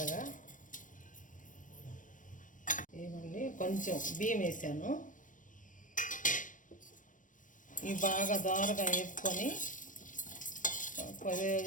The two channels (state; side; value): late; right; 0.38 ms